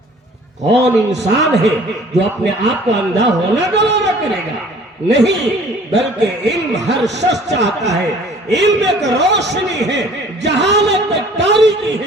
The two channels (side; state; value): both; normal; correlation 0.52